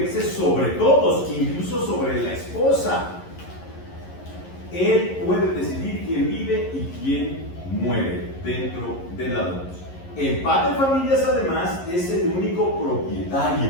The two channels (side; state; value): right; late; 11 ms